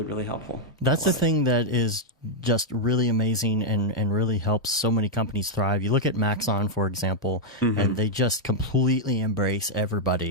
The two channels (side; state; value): both; normal; correlation -0.02